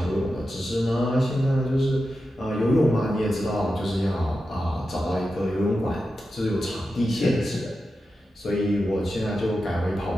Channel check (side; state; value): both; normal; correlation 0.90